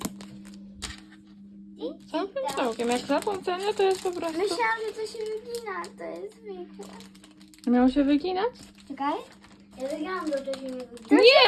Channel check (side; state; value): both; identical; correlation 1.00